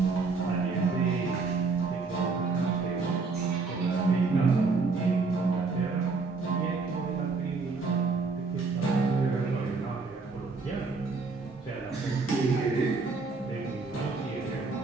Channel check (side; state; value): left; quieter; 4.2 dB